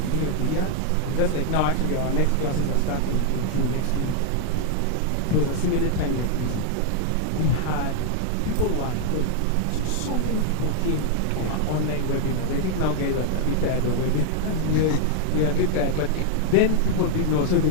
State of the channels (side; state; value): both; different; correlation -0.01